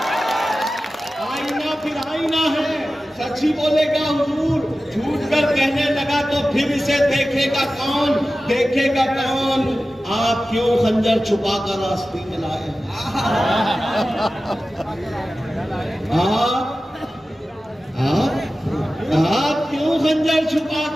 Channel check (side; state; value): both; normal; correlation 0.95